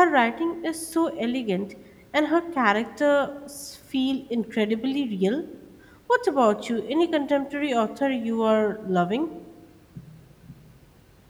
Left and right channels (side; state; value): both; identical; correlation 1.00